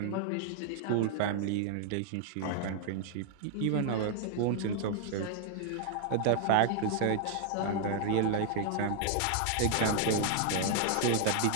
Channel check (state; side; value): different; both; correlation 0.00